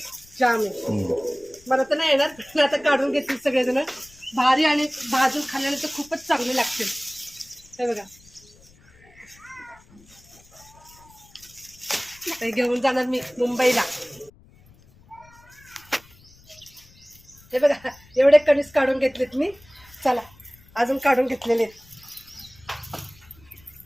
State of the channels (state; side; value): noise; left; rumble, 27 dB below the sound